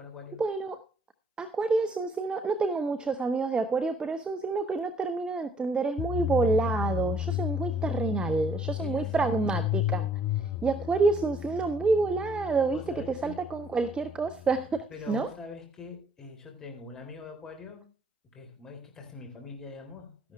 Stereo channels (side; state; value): both; normal; correlation 0.65